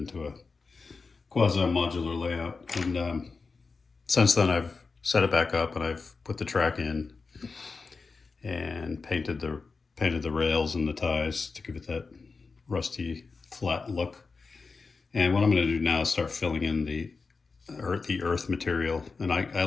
a quasi-modular layout. And since then, I've set it back up and I've put the track in and painted the rails and the ties to give it that rusty, flat look. And what I'm going to do now is start filling in the earth material, and I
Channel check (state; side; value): quieter; right; 4.4 dB